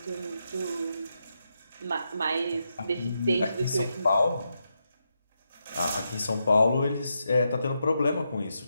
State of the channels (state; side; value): inverted; both; correlation -0.84